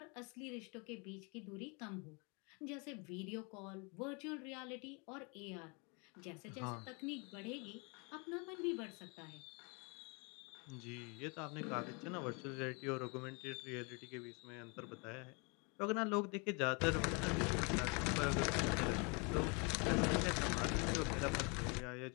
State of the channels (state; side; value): quieter; right; 32.2 dB